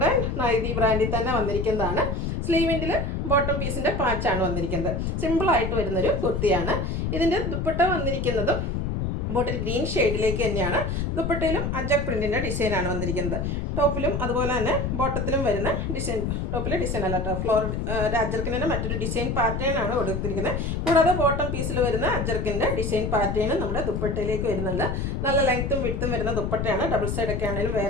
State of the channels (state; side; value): noise; left; rumble, 1 dB below the sound